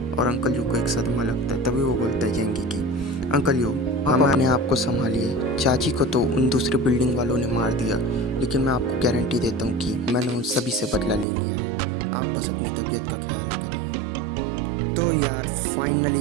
और अंकल यू को एक सदमा लगता है। तभी वो बोलता है जेंगी की अंकल यू आप अपने आप को संभालिए, चाची को तो उन दूसरे बिल्डिंग वालों ने मार दिया, लेकिन मैं आपको गारंटी देता हूँ कि मैंने उन सभी से बदला ले लिया है, आप बस अपनी तबीयत का ख्याल करिए। तो यार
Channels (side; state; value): left; drops out; at 11.2 s